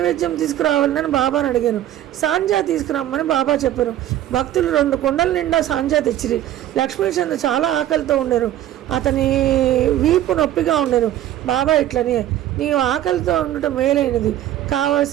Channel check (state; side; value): quieter; left; 12.7 dB